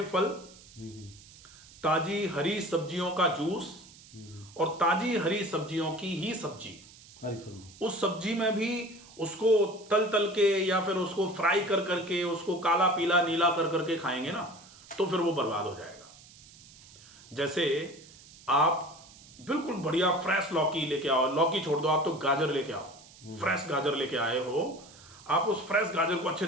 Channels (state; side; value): noise; right; hiss, 22 dB below the sound